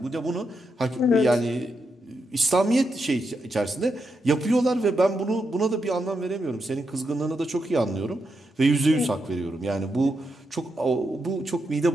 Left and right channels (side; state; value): both; normal; correlation 0.84